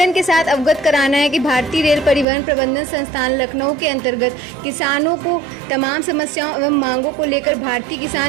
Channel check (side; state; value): left; drops out; at 2.2 s